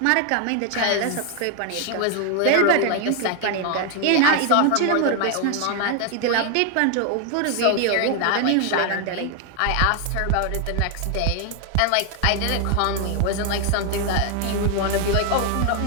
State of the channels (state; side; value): different; both; correlation 0.01